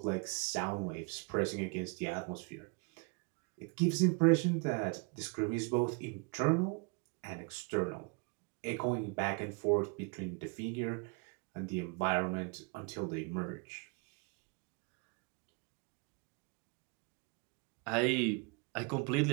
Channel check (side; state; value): left; quieter; 32.8 dB